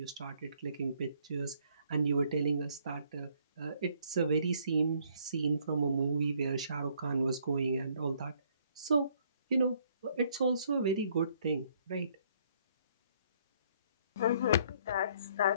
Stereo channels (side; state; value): both; inverted; correlation -0.66